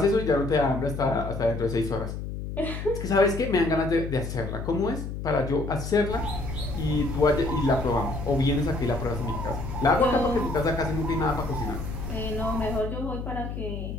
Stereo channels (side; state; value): left; noise; hum, 6 dB below the sound